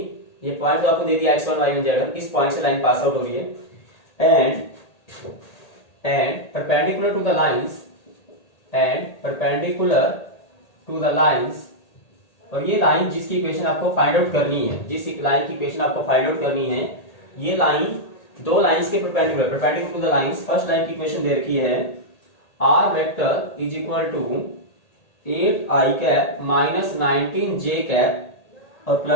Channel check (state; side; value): late; right; 1.8 ms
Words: ये पॉइंट जो आपको दे दिया x1 y1 z1, इस पॉइंट से लाइन पास आउट हो रही है and perpendicular to the lines, और ये लाइन जिसकी इक्वेशन आपको फाइंड आउट करनी है, जिस लाइन की इक्वेशन आपको फाइंड आउट करनी है, ये लाइन दो लाइंस के perpendicular to the lines. First line की इक्वेशन दे रखी है r vector is equal to 8i cap minus 19j cap और